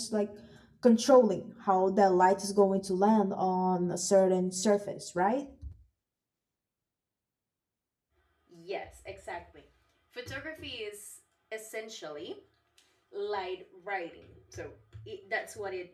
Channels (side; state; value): both; identical; correlation 1.00